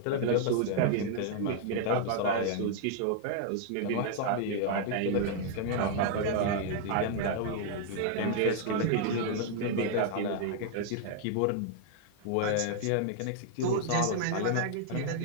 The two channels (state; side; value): different; both; correlation 0.00